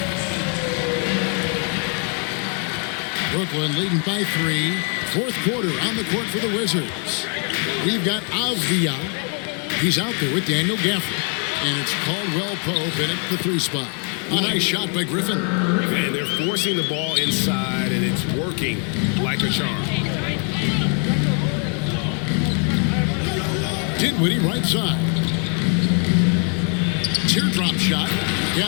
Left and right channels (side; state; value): right; quieter; 39.0 dB